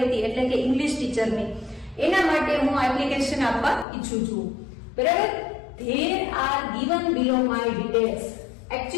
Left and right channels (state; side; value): drops out; right; at 3.9 s